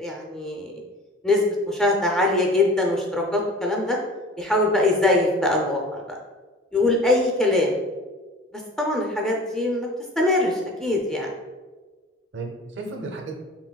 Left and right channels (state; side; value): normal; both; correlation 0.42